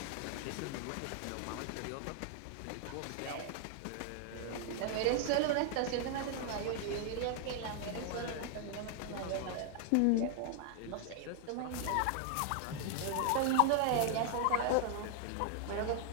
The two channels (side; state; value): both; different; correlation 0.00